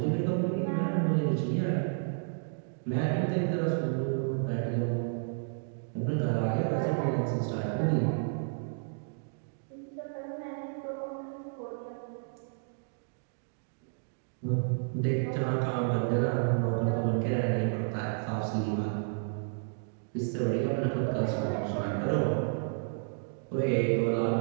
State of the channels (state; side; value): silent; left; digital silence